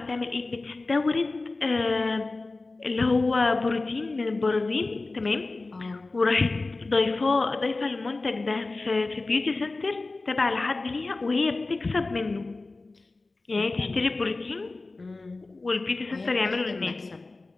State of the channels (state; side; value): quieter; right; 3.4 dB